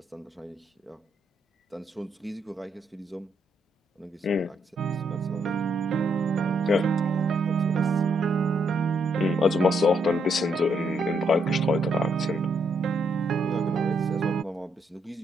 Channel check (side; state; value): both; normal; correlation 0.75